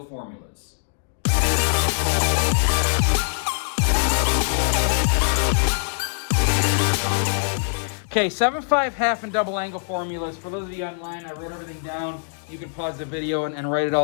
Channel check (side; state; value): right; silent; digital silence